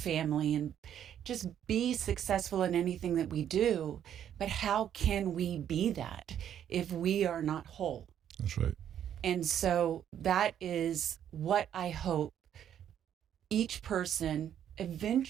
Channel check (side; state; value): left; quieter; 9.8 dB